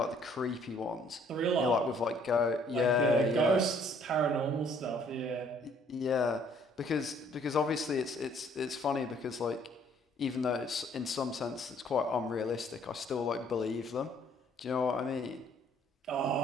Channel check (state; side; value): normal; both; correlation 0.62